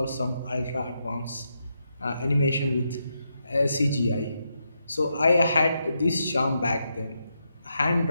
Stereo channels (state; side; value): inverted; both; correlation -0.83